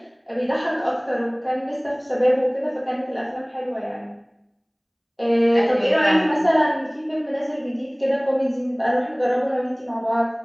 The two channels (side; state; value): both; identical; correlation 1.00